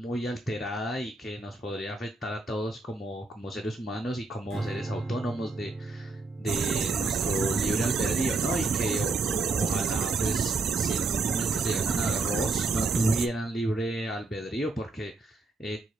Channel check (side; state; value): left; quieter; 3.4 dB